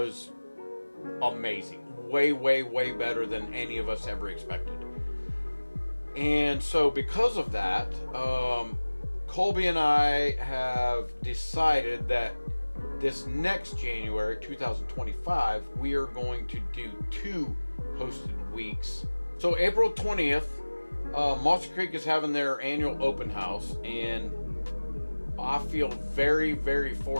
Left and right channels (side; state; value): both; inverted; correlation -1.00